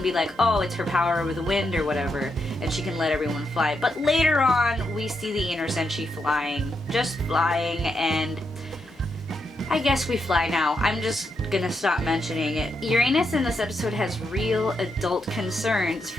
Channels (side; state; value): both; normal; correlation 0.82